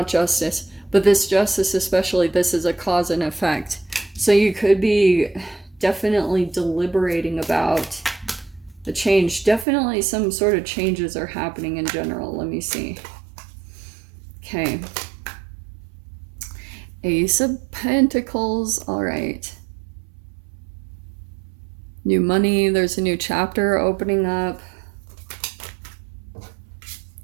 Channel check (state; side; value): drops out; left; at 9.7 s